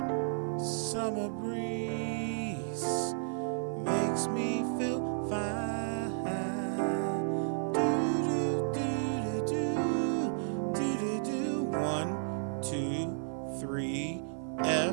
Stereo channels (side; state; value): left; silent; 56 dB below the other